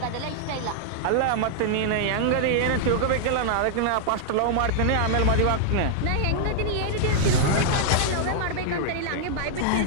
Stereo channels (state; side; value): different; both; correlation -0.01